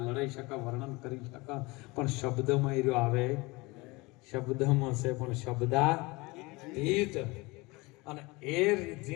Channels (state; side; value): quieter; right; 23.9 dB